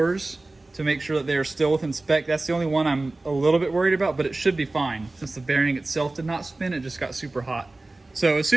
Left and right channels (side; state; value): left; quieter; 3.0 dB